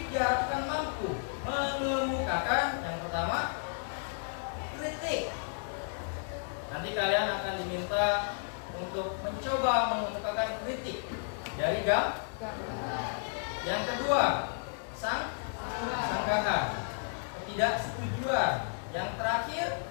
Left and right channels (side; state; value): right; silent; digital silence